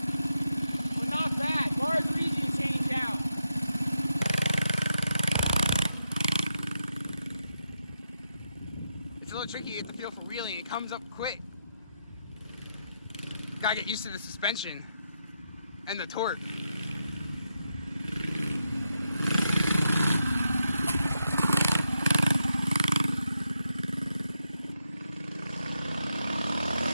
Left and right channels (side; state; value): both; inverted; correlation -0.84